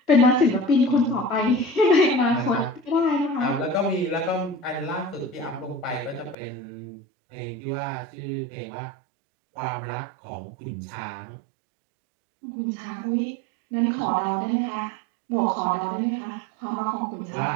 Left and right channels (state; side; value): drops out; left; at 6.4 s